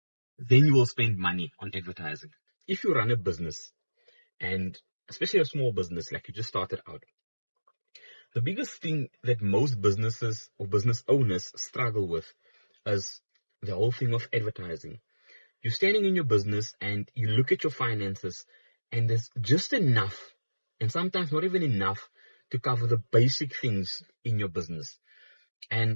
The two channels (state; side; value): inverted; both; correlation -1.00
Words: then you will spend money on advertising. If you run a business, and especially a small business like you just started out, the biggest thing that most businesses or business owners struggle with is the whole thing of advertising. You're standing in your business and you look at your finances, and there's just enough, and sometimes not even enough, to cover the basic things in your business.